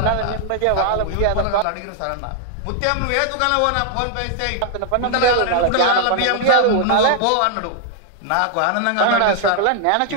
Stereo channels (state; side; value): different; both; correlation 0.00